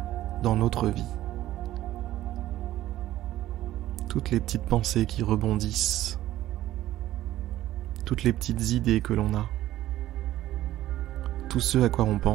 dans notre vie. Toutes les petites pensées qui rebondissent, toutes les petites idées que l'on a, tout ce à quoi on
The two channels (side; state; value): left; quieter; 14.3 dB